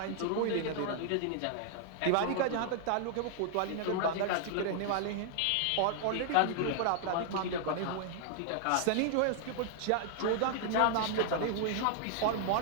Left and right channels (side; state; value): both; different; correlation 0.00